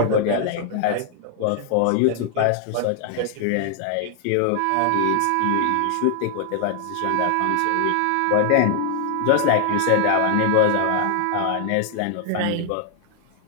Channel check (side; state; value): both; different; correlation 0.00